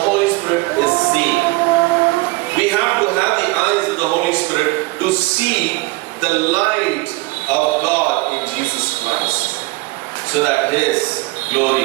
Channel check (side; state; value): left; quieter; 23.3 dB